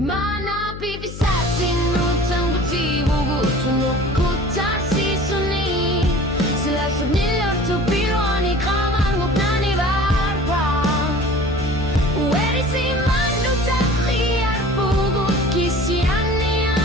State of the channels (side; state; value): left; noise; hum, 11 dB below the sound